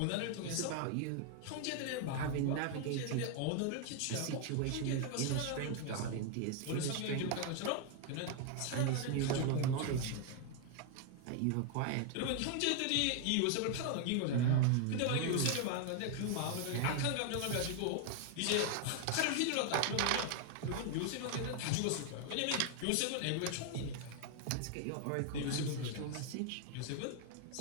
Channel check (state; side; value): different; both; correlation 0.00